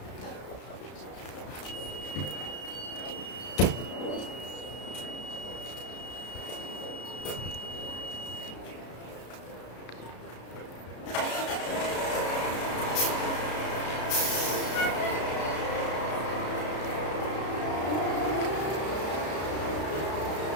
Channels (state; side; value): late; right; 33 ms